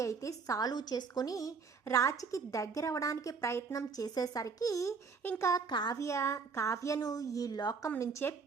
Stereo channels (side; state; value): left; quieter; 5.2 dB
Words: అయితే సాల్వ్ చేసుకొని రాజ్కి దగ్గర అవ్వడానికి ప్రయత్నం చేసేసరికి ఇంకా కావ్యను ఈ లోకం నుంచే